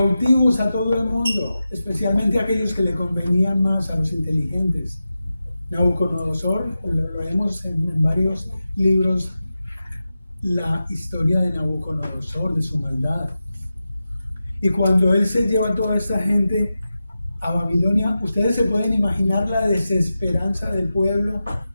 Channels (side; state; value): both; inverted; correlation -0.92